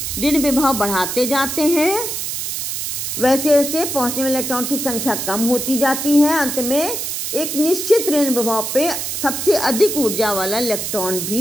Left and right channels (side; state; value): right; noise; hiss, 3 dB below the sound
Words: ऋण विभव बढ़ाते जाते हैं वैसे वैसे पहुंचने वाले इलेक्ट्रॉन की संख्या कम होती जाती है। अंत में एक निश्चित ऋण विभव पे सबसे अधिक ऊर्जा वाला इलेक्ट्रॉन